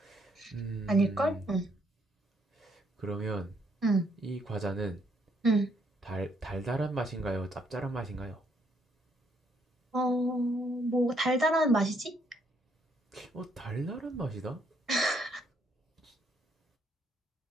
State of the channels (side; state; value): both; normal; correlation 0.71